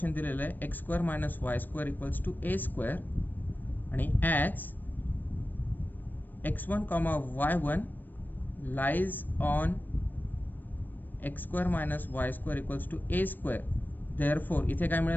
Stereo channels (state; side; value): late; right; 0.089 ms